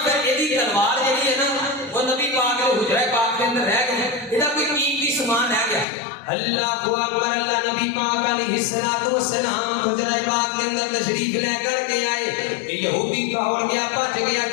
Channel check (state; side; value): drops out; right; at 5.9 s